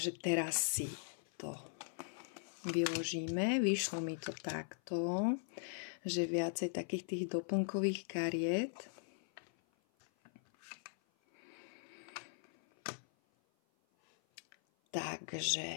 teraz si to vyložíme. Vyšlo mi to takto, že viacej takých tých doplnkových kariet.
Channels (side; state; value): right; silent; 51 dB below the other